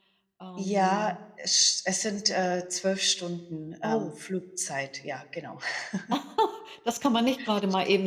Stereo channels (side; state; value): both; identical; correlation 1.00